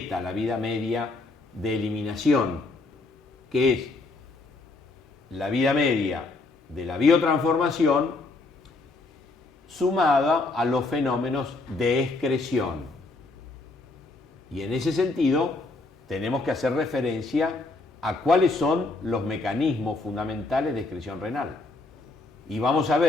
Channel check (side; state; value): right; quieter; 3.3 dB